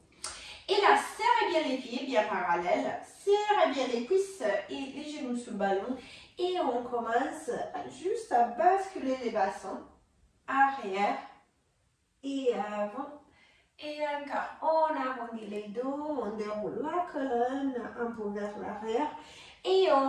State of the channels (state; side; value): identical; both; correlation 1.00